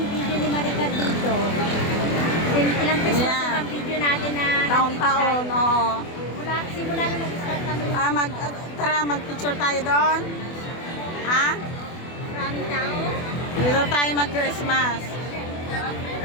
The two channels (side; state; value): right; late; 24 ms